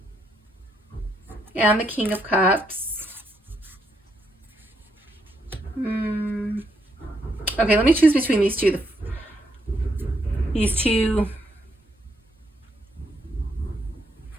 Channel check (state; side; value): normal; both; correlation 0.76